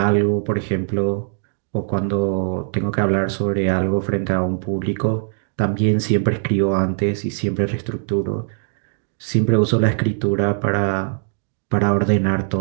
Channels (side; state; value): left; silent; digital silence